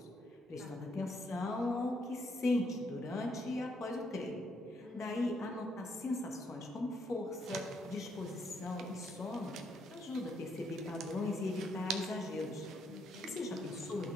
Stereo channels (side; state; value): both; normal; correlation 0.74